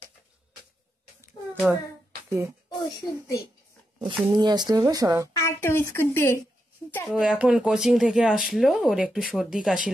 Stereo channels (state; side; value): normal; both; correlation 0.85